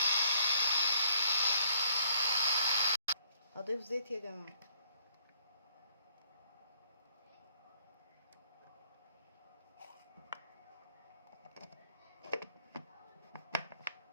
هضيف زيت يا جماعه.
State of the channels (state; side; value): inverted; both; correlation -0.65